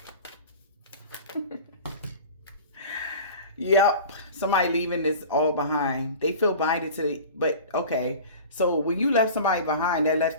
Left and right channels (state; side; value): inverted; both; correlation -0.38